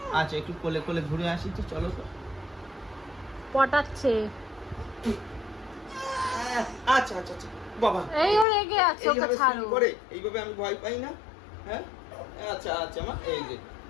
আচ্ছা একটু কোলে কোলে ঘুরে আসি তো, চলো তো। পটাচ্ছে। আচ্ছা আচ্ছা আচ্ছা বাবা, এই ও রেগে আছে, ওকে এইভাবে ছাড়ো। swing করে এইভাবে আমি ভয় পাই না। হ্যাঁ আচ্ছা আচ্ছা মা,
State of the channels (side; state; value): right; drops out; at 8.5 s